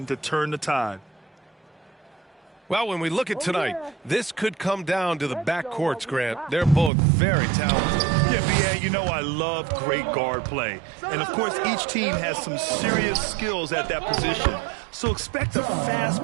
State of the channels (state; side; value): drops out; left; at 6.9 s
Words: to turn the tide. Well, when we look at tonight, this could come down to the backcourts, Grant. They're both very talented. Yeah, BA, you know I love great guard play. And, of course, each team has some serious skills at that position. So expect a fast